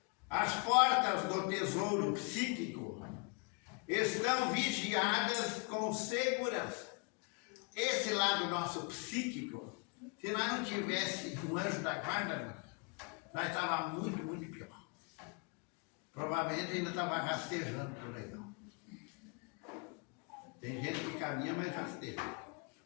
As portas do tesouro psíquico estão vigiadas com segurança. Esse lado nosso psíquico, se nós não tivesse um anjo da guarda, nós estávamos muito, muito pior. Provavelmente ainda estava rastejando por aí. Tem gente que caminha, mas rasteja.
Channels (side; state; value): right; quieter; 33.7 dB